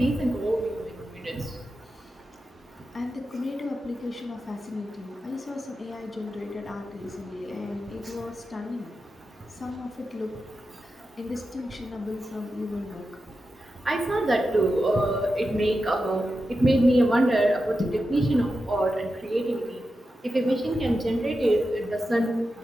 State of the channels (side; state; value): both; normal; correlation 0.90